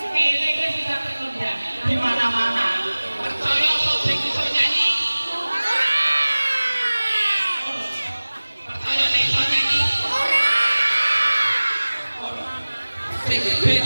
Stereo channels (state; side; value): inverted; both; correlation -1.00